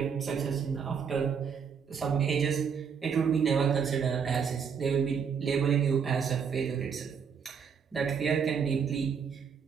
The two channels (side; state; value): left; quieter; 6.7 dB